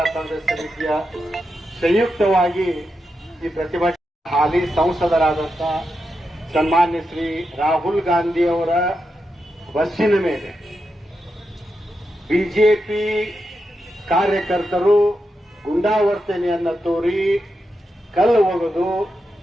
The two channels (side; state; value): both; normal; correlation 0.87